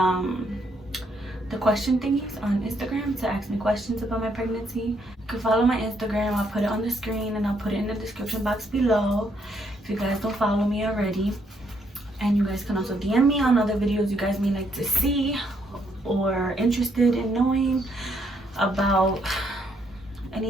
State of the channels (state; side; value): normal; both; correlation 0.73